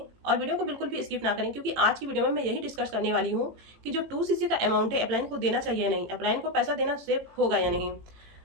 और वीडियो को बिल्कुल भी स्किप ना करें, क्योंकि आज की वीडियो में मैं यही डिस्कस करने वाली हूँ कि जो 2cc का अमाउंट है अपलाइन को देना चाहिए या नहीं, अपलाइन को पैसा देना सेफ होगा या नहीं।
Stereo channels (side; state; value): left; late; 18 ms